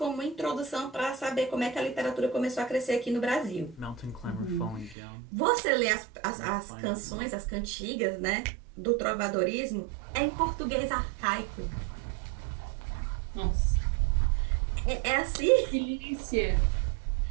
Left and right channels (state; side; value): drops out; left; at 5.0 s